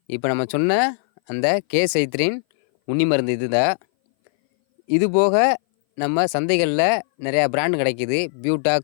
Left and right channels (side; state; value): right; silent; 60 dB below the other